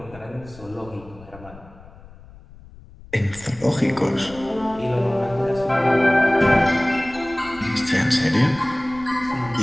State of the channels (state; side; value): noise; left; rumble, 20 dB below the sound